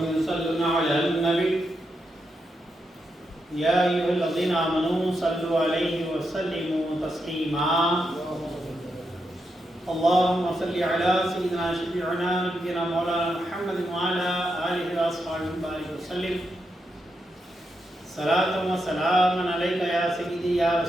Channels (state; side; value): normal; both; correlation 0.84